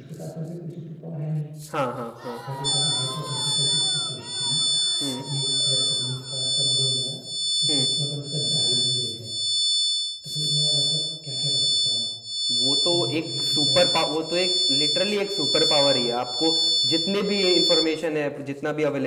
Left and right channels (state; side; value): identical; both; correlation 1.00